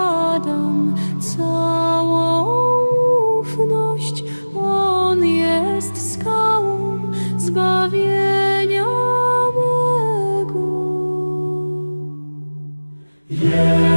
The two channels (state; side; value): inverted; both; correlation -1.00